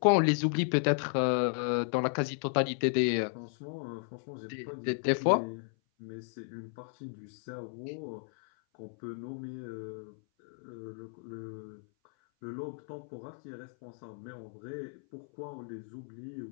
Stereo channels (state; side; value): silent; right; 55 dB below the other